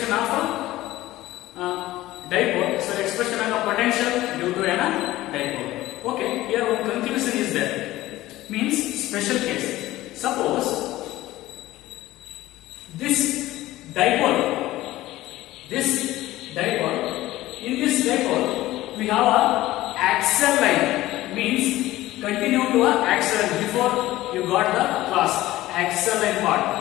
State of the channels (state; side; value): quieter; right; 16.4 dB